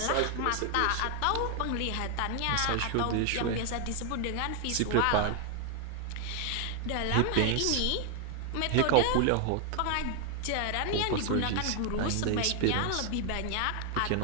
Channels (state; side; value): different; both; correlation 0.00